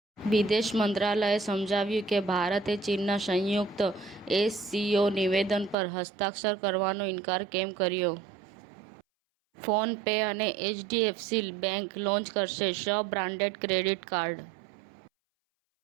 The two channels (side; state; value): left; drops out; at 5.8 s